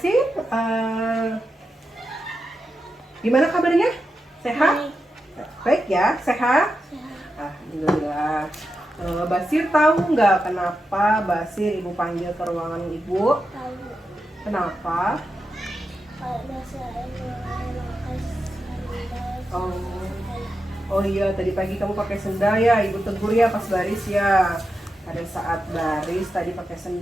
gimana kabarnya? Sehat? Baik ya, sehat? Alhamdulillah. Basir tahu nggak kenapa Basir ibu panggil ke ruangan ibu? Tahu. Kenapa? Karena saya memakai sandal. Oh iya, tadi pagi kamu pakai sendal ya, ibu tegur ya pas baris ya. Pada saat baris tadi pakai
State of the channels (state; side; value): normal; both; correlation 0.88